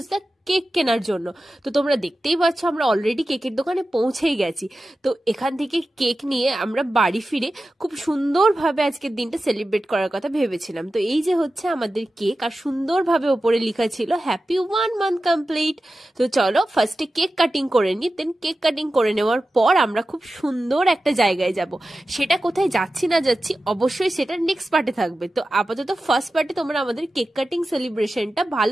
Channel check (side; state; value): both; normal; correlation 0.94